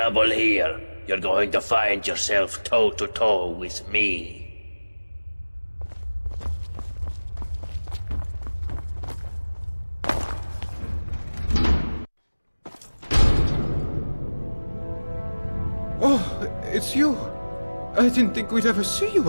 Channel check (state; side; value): inverted; both; correlation -1.00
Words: here, you're going to find yourself toe-to-toe with me. Oh, it's you. I didn't think we'd ever see